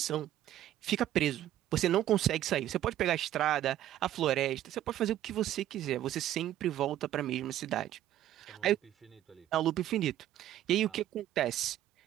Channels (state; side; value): quieter; left; 12.6 dB